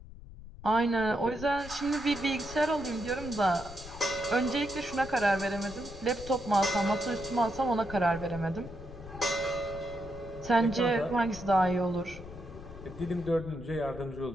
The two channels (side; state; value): left; noise; rumble, 15 dB below the sound